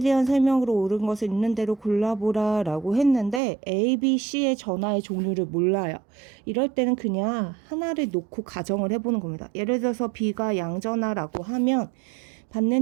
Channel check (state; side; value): drops out; left; at 3.4 s